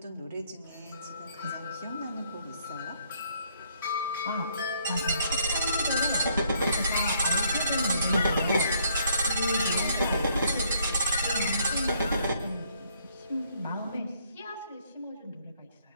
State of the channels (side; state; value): both; inverted; correlation -0.67